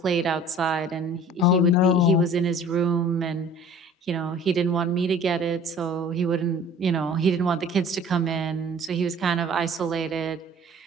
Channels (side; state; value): both; normal; correlation 0.48